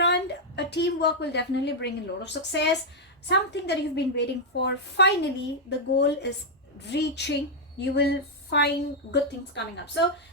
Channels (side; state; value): both; normal; correlation -0.03